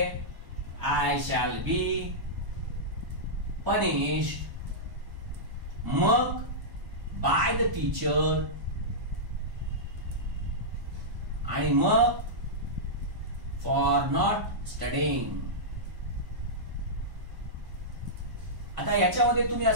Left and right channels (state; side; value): late; left; 1.1 ms